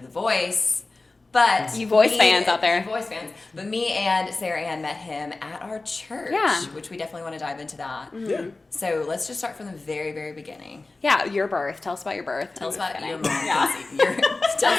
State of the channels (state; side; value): quieter; right; 3.4 dB